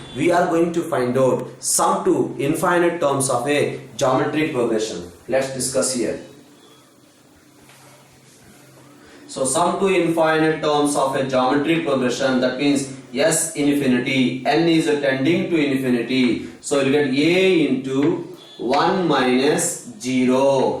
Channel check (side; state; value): both; identical; correlation 1.00